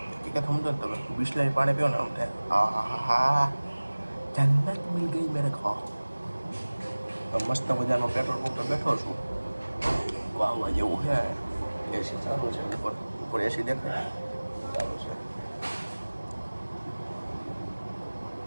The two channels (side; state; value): both; inverted; correlation -1.00